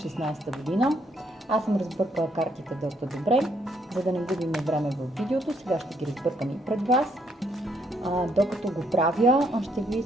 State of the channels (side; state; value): both; normal; correlation 0.71